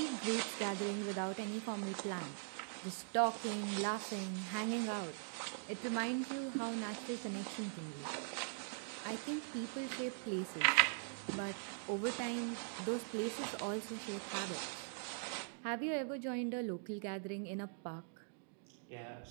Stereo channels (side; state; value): left; silent; digital silence